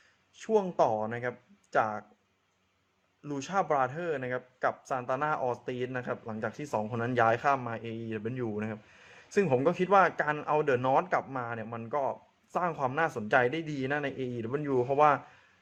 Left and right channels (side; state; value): both; identical; correlation 1.00